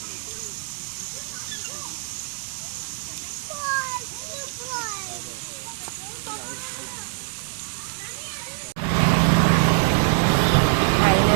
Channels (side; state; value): left; silent; digital silence